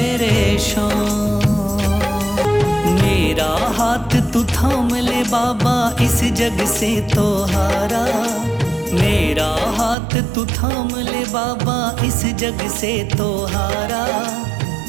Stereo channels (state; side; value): drops out; left; at 10.0 s